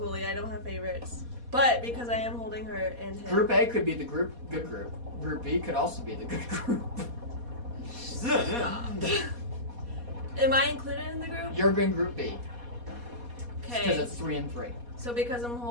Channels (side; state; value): left; late; 4.2 ms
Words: I don't have favorites. But because I am holding her and him. Group A could be the good group. Group B could also be the good group. Stop. Am I included in the group? You're in Group B because Okay. it's 3 and 3. So because I'm